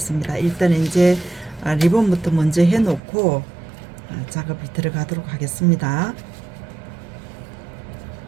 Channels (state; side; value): drops out; left; at 3.0 s